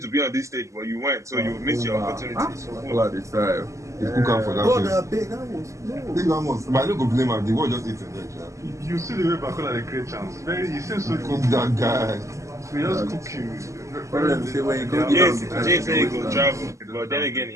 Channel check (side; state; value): left; late; 0.15 ms